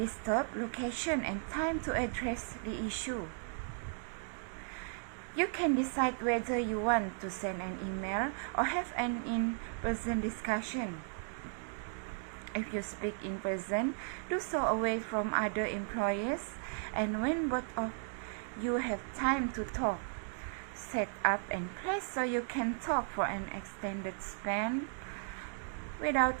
location and time to address the issue. You can decide whether you want to send an email or have an in-person discussion. If you speak in person, do so away from other employees, and when both of you have time to talk, set up and place so you can talk for an extended span without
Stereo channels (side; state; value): left; silent; digital silence